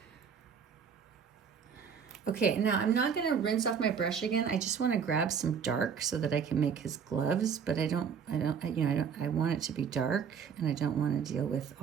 Okay, now I'm not going to rinse off my brush again. I just want to grab some dark so that I can make his gloves, but I want it to be dark and I don't want to deal with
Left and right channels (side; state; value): left; quieter; 6.9 dB